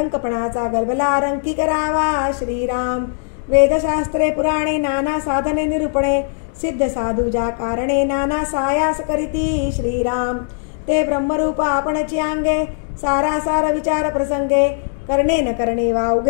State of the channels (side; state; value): right; silent; digital silence